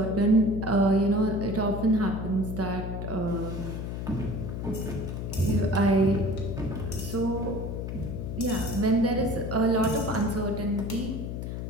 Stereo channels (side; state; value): left; noise; hum, 5 dB below the sound